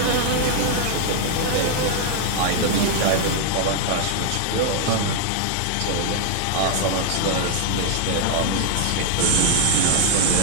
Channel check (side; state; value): both; different; correlation 0.00